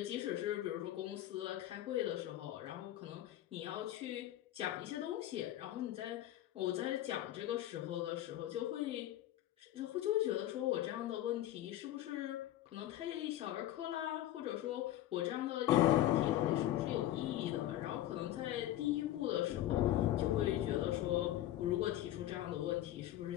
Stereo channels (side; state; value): right; quieter; 13.5 dB